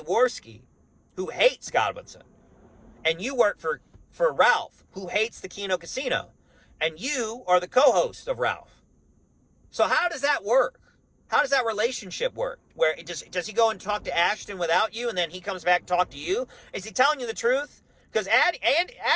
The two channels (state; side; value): identical; both; correlation 1.00